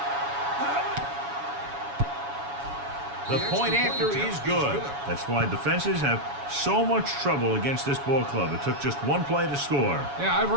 The point after is good. That's why defenses have so much trouble against this ball club. It took just one play to score. Yeah, I've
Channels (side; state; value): left; late; 7.1 ms